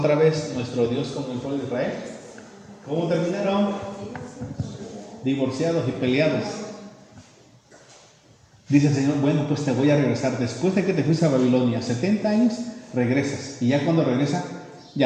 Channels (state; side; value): identical; both; correlation 1.00